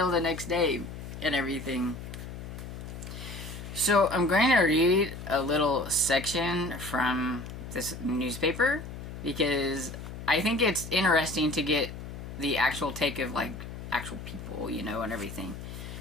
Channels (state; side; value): noise; left; hum, 10 dB below the sound